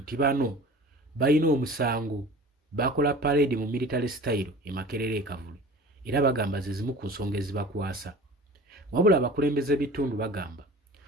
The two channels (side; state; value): both; normal; correlation 0.40